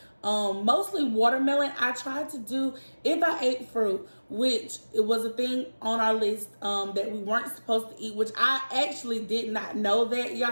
mostly watermelon. I tried to do, if I ate fruit, which it was a thing on our list that we weren't supposed to eat, which I actually did not know that,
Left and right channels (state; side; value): inverted; both; correlation -1.00